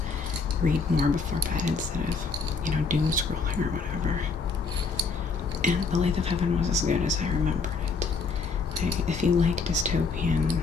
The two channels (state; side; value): quieter; right; 4.5 dB